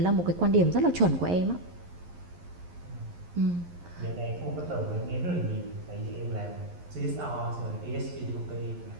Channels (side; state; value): left; late; 11 ms